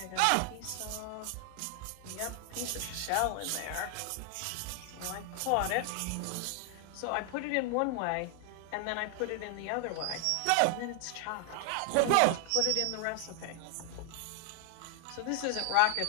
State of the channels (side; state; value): both; different; correlation 0.00